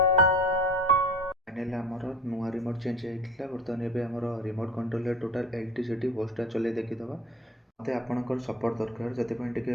नुआ रिमोट चेंज होता बर्तमान एवं आमर remote control total LT CT होस्टा चले देखीदे मत आपंकर सपोर्ट दरकार से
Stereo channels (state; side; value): normal; both; correlation 0.40